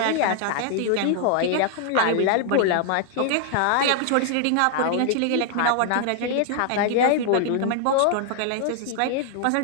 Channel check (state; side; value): different; both; correlation 0.00